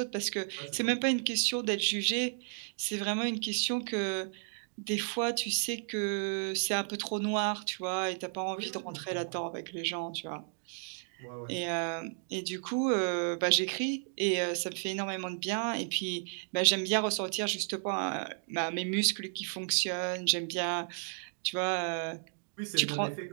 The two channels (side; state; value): left; silent; digital silence